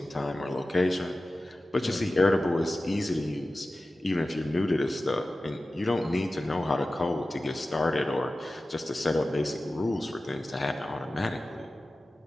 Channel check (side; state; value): both; normal; correlation 0.95